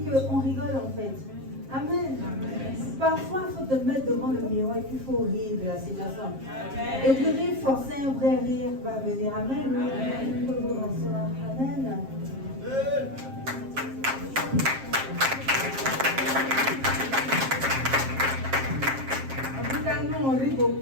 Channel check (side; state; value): left; late; 7.5 ms